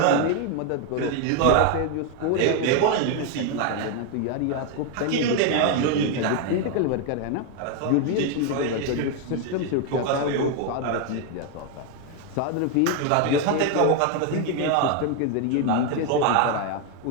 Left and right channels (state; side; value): different; both; correlation 0.01